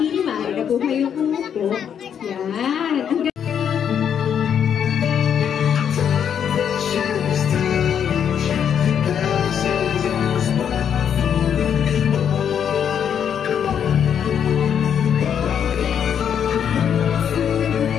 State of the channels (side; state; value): right; quieter; 8.4 dB